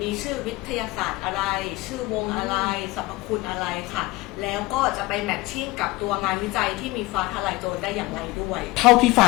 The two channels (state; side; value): quieter; right; 20.1 dB